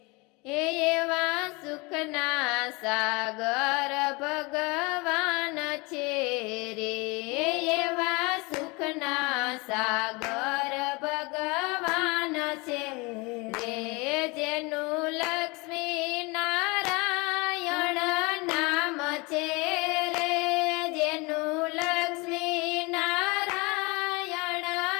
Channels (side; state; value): right; quieter; 26.8 dB